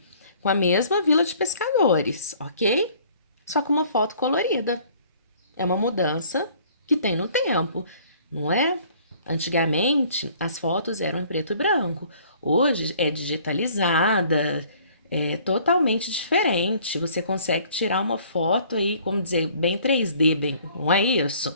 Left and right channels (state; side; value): inverted; both; correlation -0.56